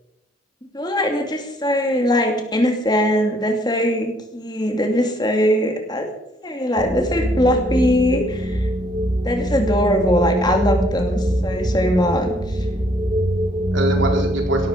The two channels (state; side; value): normal; both; correlation 0.65